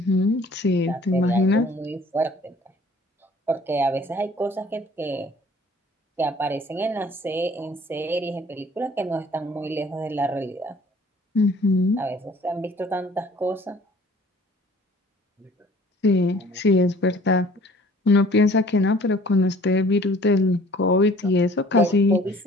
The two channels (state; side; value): normal; both; correlation 0.53